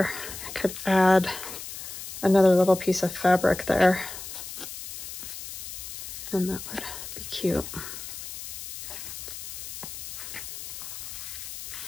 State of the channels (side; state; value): left; noise; hiss, 9 dB below the sound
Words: I could add another little piece of fabric there, and that would be cute.